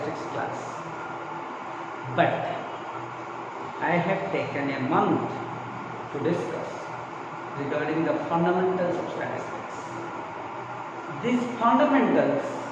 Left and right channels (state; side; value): identical; both; correlation 1.00